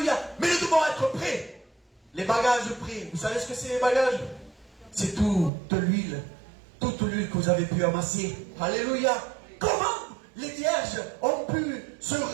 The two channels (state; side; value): drops out; left; at 5.5 s